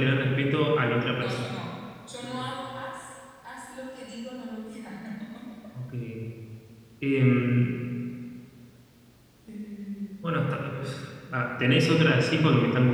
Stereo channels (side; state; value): both; identical; correlation 1.00